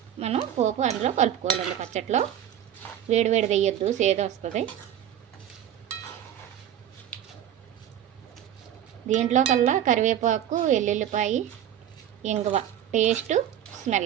మనం పోపు అందులో కలుపుకోవాలండి. పచ్చట్లో వేడి వేయొద్దు, సేద వస్తుంది. దీంట్లో కల్లా కరివేపాకు, ఎల్లుల్లిపాయ, ఇంగువ,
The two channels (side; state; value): left; quieter; 10.6 dB